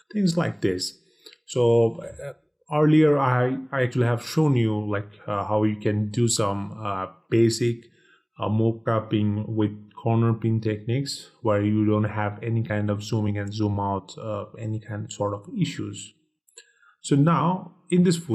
things like this. So earlier I actually have shown you like how you can do some basic mockupping with corner pin techniques where you don't have any kind of zooming and zoom out, any kind of sort of issues. So now in this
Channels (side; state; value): both; identical; correlation 1.00